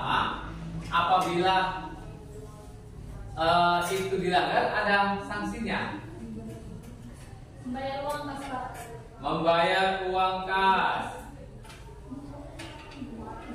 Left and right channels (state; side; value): identical; both; correlation 1.00